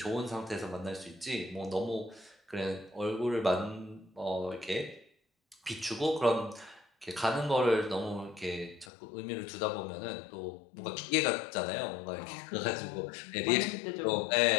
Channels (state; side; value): drops out; right; at 8.9 s